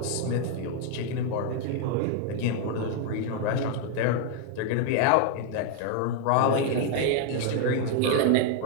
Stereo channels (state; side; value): different; both; correlation 0.00